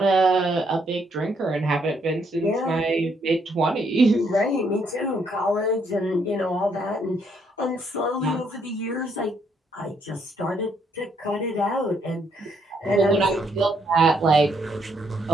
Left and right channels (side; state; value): both; normal; correlation 0.72